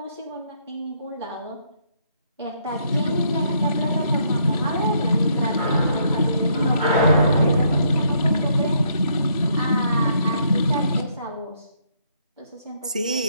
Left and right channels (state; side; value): inverted; both; correlation -0.71